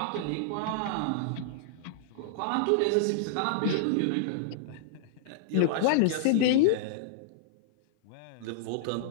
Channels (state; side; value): different; both; correlation -0.01